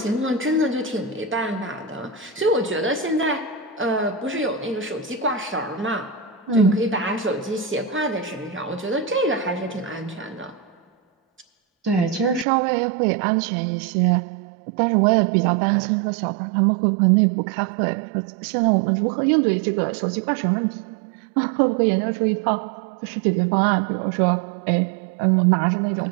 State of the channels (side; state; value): left; drops out; at 12.5 s